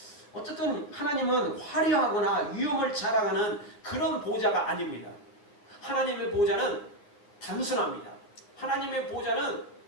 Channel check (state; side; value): late; right; 9.4 ms